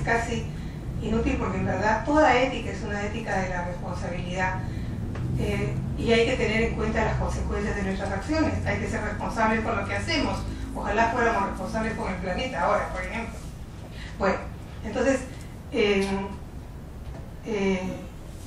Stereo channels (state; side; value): identical; both; correlation 1.00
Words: casi inútil, porque en verdad toda ética es una ética de la responsabilidad, y hay que tener en cuenta las consecuencias de nuestras acciones. Hay que ser responsables con lo que hacemos. Ojalá fuéramos responsables con el planeta ahora, por ejemplo. Bueno, entonces